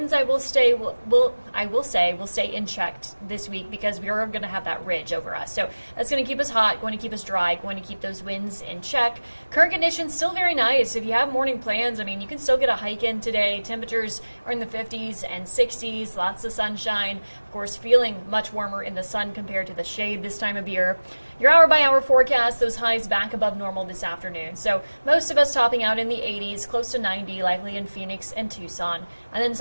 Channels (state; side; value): inverted; both; correlation -1.00